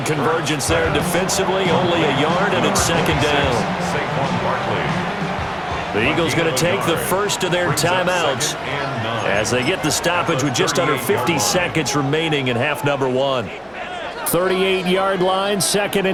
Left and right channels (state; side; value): identical; both; correlation 1.00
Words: convergence there defensively. Only a yard, and it's second down. The Eagles going to take the first of their timeouts as they get the stoppage with just under 50 seconds remaining in half number 1. 38-yard line, second